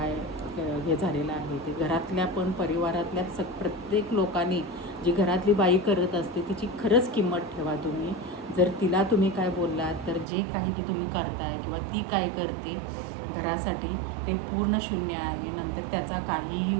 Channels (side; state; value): left; drops out; at 10.2 s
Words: हे झालेलं आहे ते. घरातल्या पण परिवारातल्या प्रत्येक लोकांनी जी घरातली बाई करत असते तिची खरंच किंमत ठेवा तुम्ही. जर तिला तुम्ही काय बोललात तर जे काही की तुम्ही करताय किंवा ती काय करते घरासाठी ते पूर्ण शून्य आहे. नंतर त्याचा काहीही